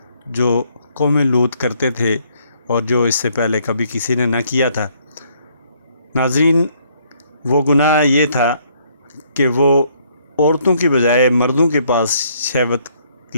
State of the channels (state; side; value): inverted; both; correlation -0.68